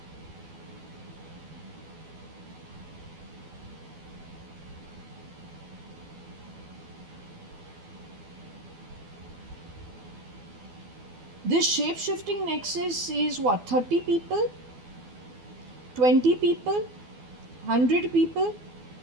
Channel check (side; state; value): left; late; 12 ms